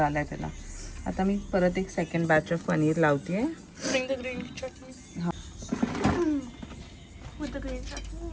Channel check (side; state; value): both; identical; correlation 1.00